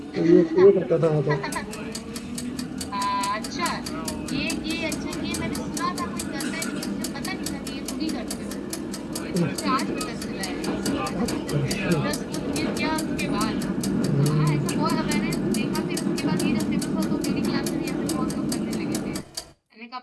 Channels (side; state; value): both; identical; correlation 1.00